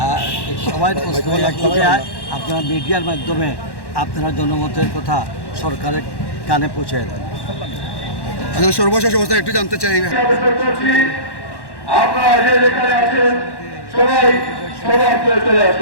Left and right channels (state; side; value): late; right; 1.1 ms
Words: সবাই প্রশ্ন আপনারা মিডিয়ার মাধ্যমে আপনারা জনমতের কথা সরকারের কানে পৌঁছে দেন। সর্বশেষ অবস্থা একটু জানতে চাই। আপনারা যে যেখানে আছেন সবাই সবার চলে